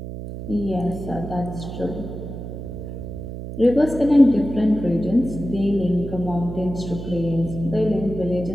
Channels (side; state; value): right; noise; hum, 9 dB below the sound